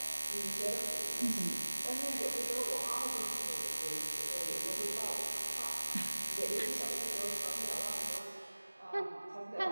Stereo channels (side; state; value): both; inverted; correlation -1.00